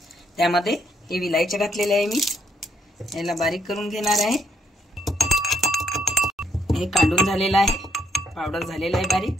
त्यामध्ये हे विलायची घातलेले आहे मी। याला बारीक करून घेणार आहे। हे काढून झालेलं आहे, पावडर झालेला आहे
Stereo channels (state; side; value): normal; both; correlation 0.73